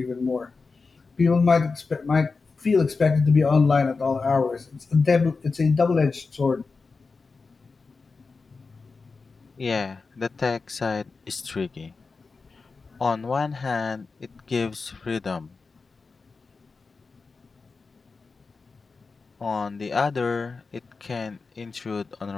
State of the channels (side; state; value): right; quieter; 4.3 dB